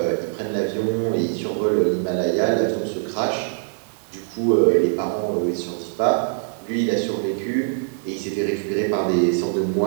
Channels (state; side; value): silent; left; digital silence